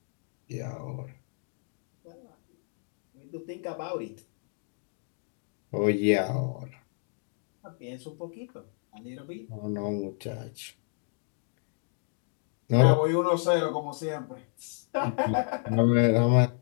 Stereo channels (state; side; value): silent; right; 57 dB below the other